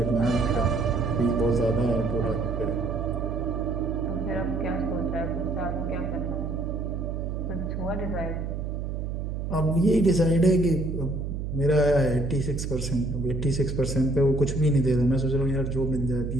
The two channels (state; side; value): noise; right; hum, 4 dB below the sound